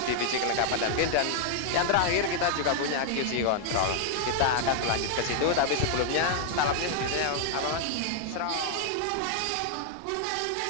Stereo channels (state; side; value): different; both; correlation 0.00